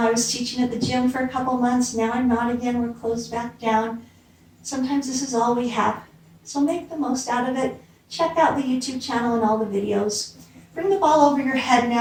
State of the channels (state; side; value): identical; both; correlation 1.00